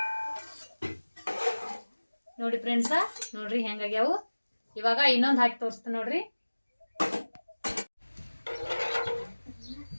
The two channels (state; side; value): inverted; both; correlation -1.00